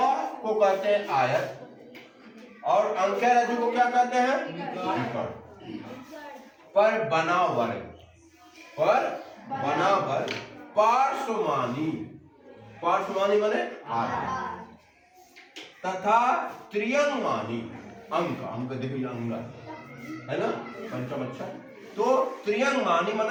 को कहते हैं आयत, और अंक्या रज्जु को क्या कहते हैं? विकर्ण। पर बना वर्ग पार्श्वमानी माने आधा, तथा त्रियंगमानी अंक देखिए, अंग है ना, पंचम अक्षर। तो त्रियंगमानी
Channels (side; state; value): both; identical; correlation 1.00